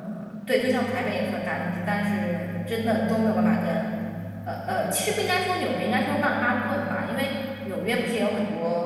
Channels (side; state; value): both; identical; correlation 1.00